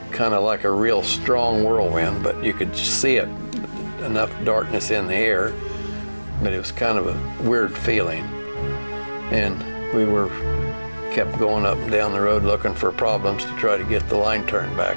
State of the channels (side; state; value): both; inverted; correlation -1.00